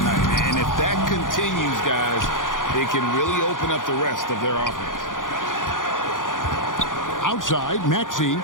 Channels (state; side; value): late; right; 0.89 ms